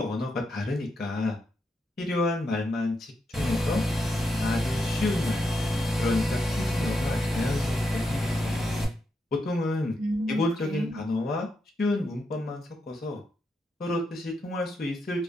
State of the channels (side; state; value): both; normal; correlation 0.83